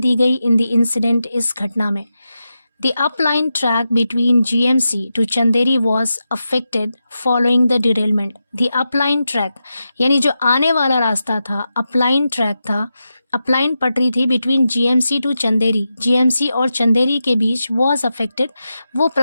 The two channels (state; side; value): inverted; both; correlation -0.90